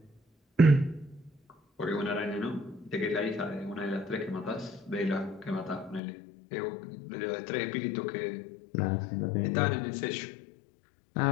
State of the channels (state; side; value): drops out; right; at 6.0 s